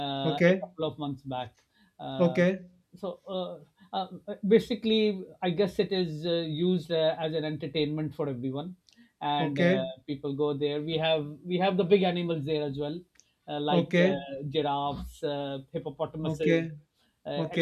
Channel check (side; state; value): both; identical; correlation 1.00